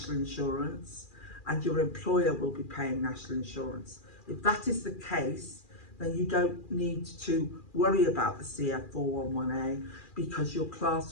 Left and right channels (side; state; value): right; late; 2.4 ms